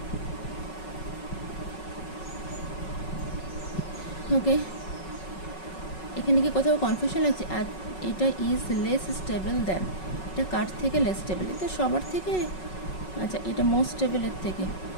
ওকে, এখানে কি কোথাও কনফিউশন লাগছে? আর এটা ইজ লেস স্টেবল দেন, এটা কার থেকে লেস স্টেবল? এটা সবার থেকে, আচ্ছা এটা মোস্ট স্টেবল এর থেকে,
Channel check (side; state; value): right; late; 5.4 ms